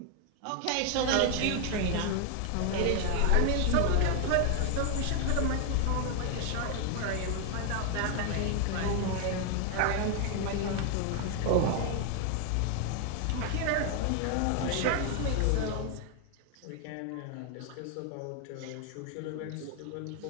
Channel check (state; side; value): different; both; correlation 0.00